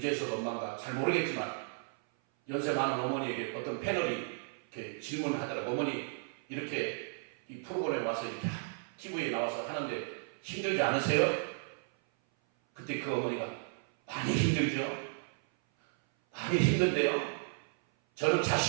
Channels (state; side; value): silent; left; 55 dB below the other